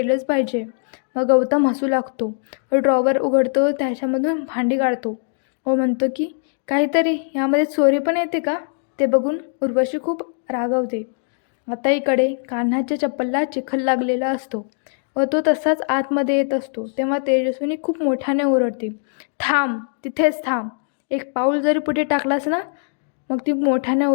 पाहिजे. मग गौतम हसू लागतो व ड्रॉवर उघडतो, त्याच्यामधून भांडी काढतो व म्हणतो की काहीतरी यामध्ये चोरी पण येते का? ते बघून उर्वशी खूप रागावते. आता इकडे कान्हाच्या चप्पलला चिखल लागलेला असतो व तो तसाच आतमध्ये येत असतो. तेव्हा तेजस्विनी खूप मोठ्याने ओरडते, थांब, तिथेच थांब. एक पाऊल जरी पुढे टाकलास ना. मग ती मोठ्याने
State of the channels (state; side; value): silent; right; digital silence